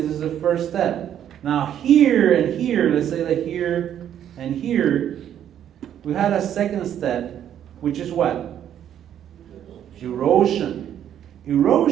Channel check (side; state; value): left; quieter; 10.1 dB